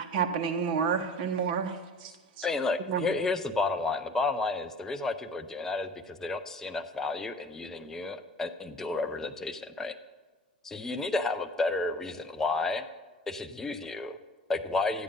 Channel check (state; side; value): normal; both; correlation 0.43